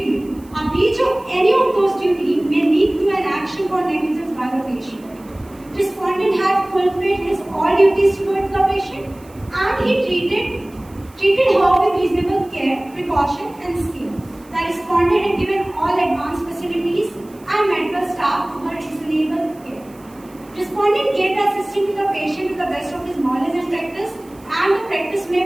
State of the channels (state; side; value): noise; right; hiss, 27 dB below the sound